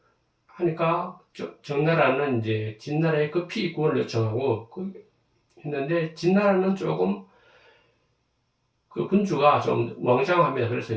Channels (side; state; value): both; identical; correlation 1.00